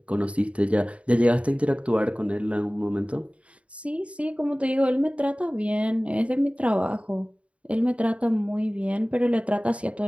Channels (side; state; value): left; late; 0.063 ms